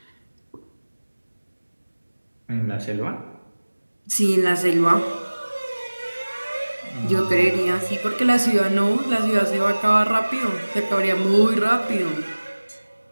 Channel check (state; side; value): inverted; both; correlation -1.00